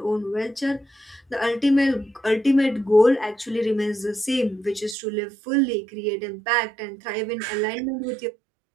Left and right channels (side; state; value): left; drops out; at 5.0 s